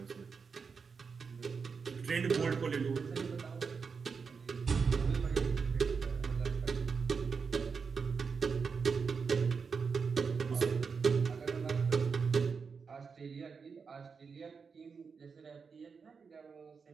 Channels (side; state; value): left; quieter; 5.5 dB